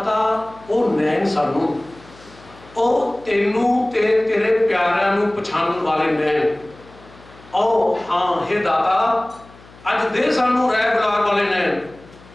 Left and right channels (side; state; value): left; noise; hum, 24 dB below the sound